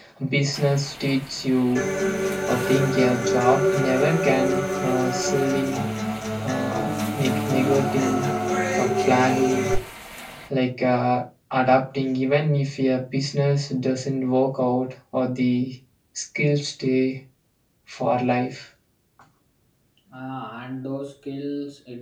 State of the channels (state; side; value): identical; both; correlation 1.00